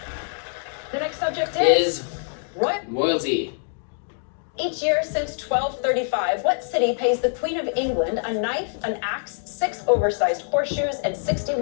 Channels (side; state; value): right; silent; 62 dB below the other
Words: The next subject is Is royalty. royalty. Each year since 1235, what city pays the Queen of England a knife, an axe, 6 oversized horseshoes, and